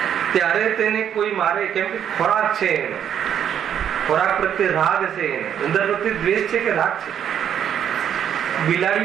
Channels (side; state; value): left; quieter; 9.2 dB